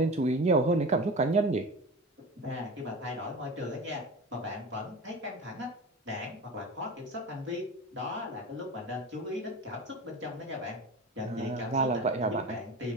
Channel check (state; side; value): normal; both; correlation 0.32